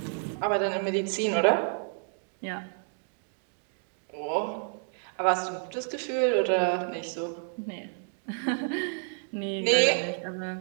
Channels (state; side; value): silent; left; 58 dB below the other